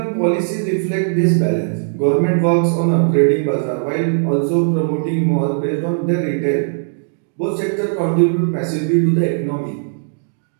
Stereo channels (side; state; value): left; silent; digital silence